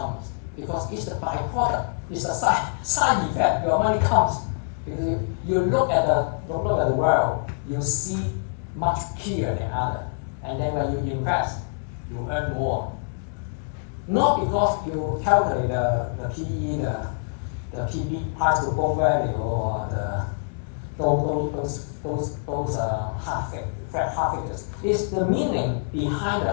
Because it's the byproduct. It's a side effect. Your money comes. Because you look at the world, you see much clearer than others. And then when you invest, you earn more. Not because you calculate the PE, the PB, price to book value, or those half figures. It's the meaning behind the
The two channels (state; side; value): silent; right; digital silence